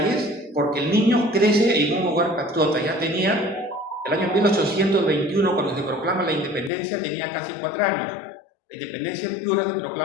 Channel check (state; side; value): drops out; right; at 6.7 s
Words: porque el niño crece en un hogar patriota. Ya tenía, el año 1821, cuando se proclama la independencia, tenía casi 4 años. La independencia en Piura se